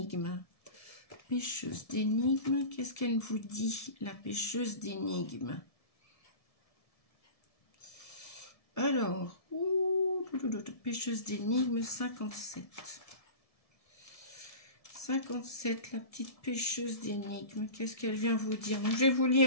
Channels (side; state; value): right; late; 1.7 ms